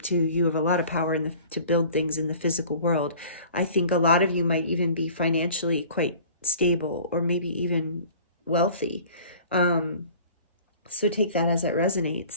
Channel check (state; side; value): inverted; both; correlation -0.46